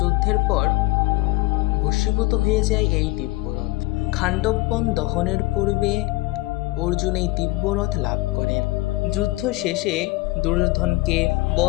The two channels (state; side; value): quieter; right; 20.4 dB